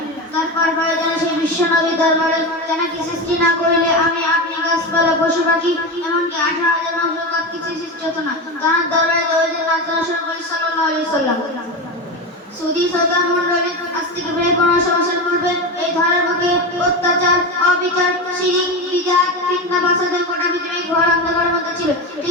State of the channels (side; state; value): both; normal; correlation 0.19